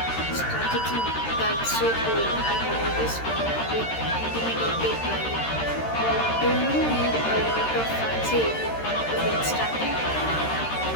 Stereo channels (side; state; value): right; late; 13 ms